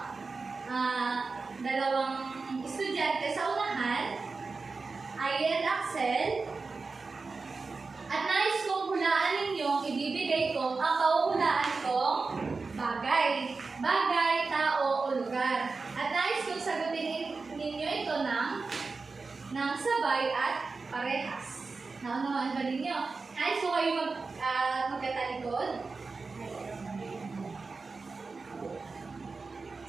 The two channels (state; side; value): quieter; left; 4.2 dB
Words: dalawang estudyante sa unahan. Ayan, Axel. At nais kong hulaan ninyo, ibibigay ko ang pauhulaan kong bagay. Bagay, tao, o lugar. At nais kong sagutin ninyo ito ng sabay at parehas. Naunawaan ba ninyo? Nais ko kayo magkatalikod.